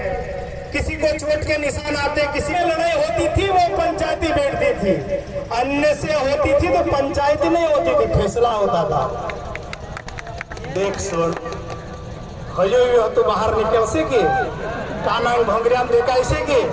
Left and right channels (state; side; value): identical; both; correlation 1.00